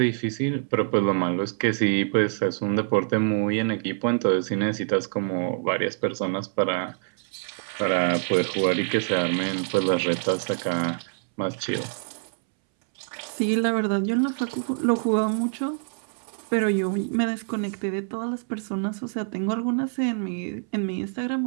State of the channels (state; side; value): silent; left; 61 dB below the other